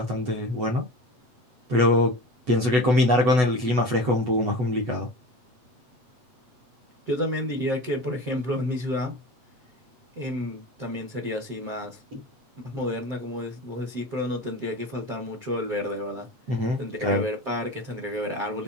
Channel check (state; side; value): late; left; 8.0 ms